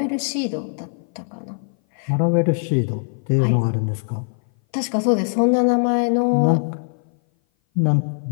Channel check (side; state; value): right; silent; 58 dB below the other